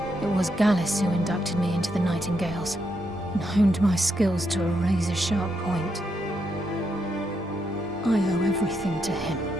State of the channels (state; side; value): normal; both; correlation 0.79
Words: It was Gallus who inducted me into the Nightingales, and honed my skills to a razor-sharp point. I owe everything to him.